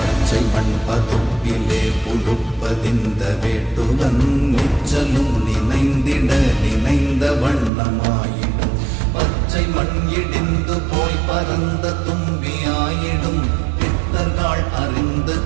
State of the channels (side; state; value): left; drops out; at 7.7 s